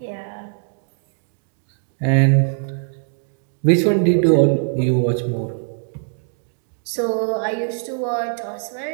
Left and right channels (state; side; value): silent; left; digital silence